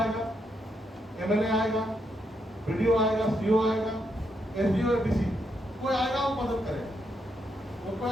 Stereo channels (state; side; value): normal; both; correlation 0.79